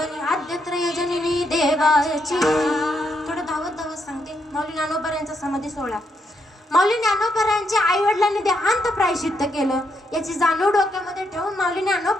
आद्यत्रय जननी देवाची. थोडं धावत सांगते. माऊली ज्ञानोबा समाधी सोहळा. माऊली ज्ञानोबा यांच्या आई वडिलांनी देहांत प्रायश्चित्त केलं. याची जाणीव डोक्यामध्ये ठेवून माऊली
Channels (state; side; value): normal; both; correlation 0.78